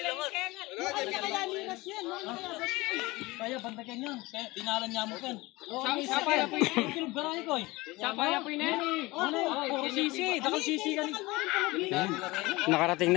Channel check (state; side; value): quieter; right; 21.5 dB